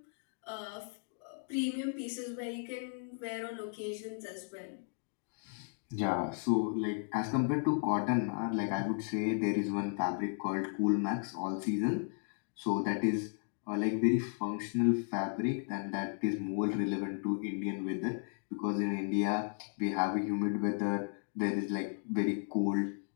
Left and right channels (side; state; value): right; silent; 54 dB below the other